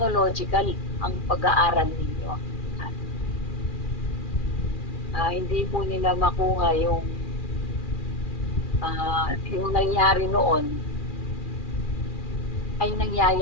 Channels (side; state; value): right; late; 2.4 ms